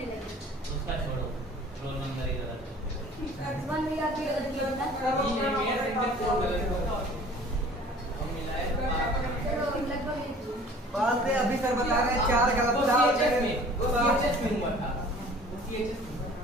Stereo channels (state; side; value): normal; both; correlation 0.48